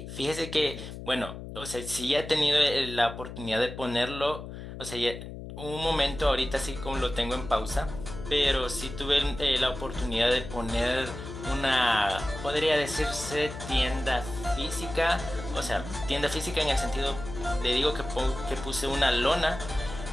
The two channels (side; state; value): left; noise; hum, 10 dB below the sound